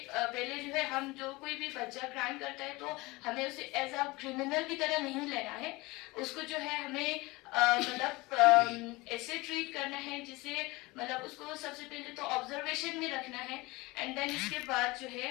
पहले जो है हम जो कोई भी बच्चा क्राइम करता है तो हमें उसे एज अ क्रिमिनल की तरह नहीं लेना है, उसको जो है हमें मतलब ऐसे ट्रीट करना है जिसे मतलब उसको सबसे पहले तो ऑब्जर्वेशन में रखना है एंड देन इसके बाद जो है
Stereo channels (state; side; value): quieter; right; 22.4 dB